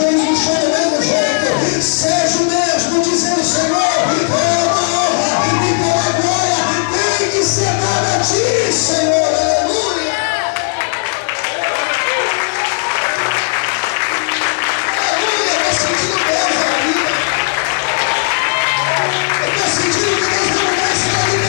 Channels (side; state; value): right; silent; digital silence